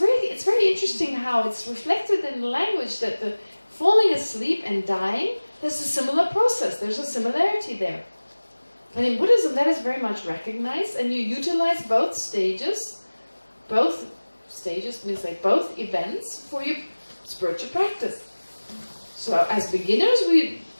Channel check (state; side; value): inverted; both; correlation -1.00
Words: interesting how it's reflected in the language that the falling asleep and dying, there's a similar process. There's a similarity there. And in Buddhism, that is very much recognized, and you utilize both stages. Both stages means like both events for your spiritual practice. So as beginners, we